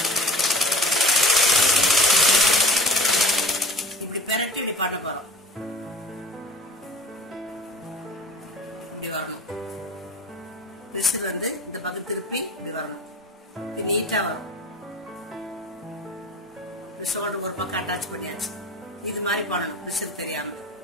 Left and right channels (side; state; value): both; normal; correlation 0.39